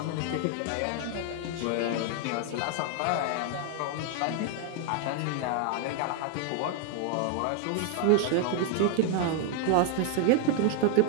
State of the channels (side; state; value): both; different; correlation 0.00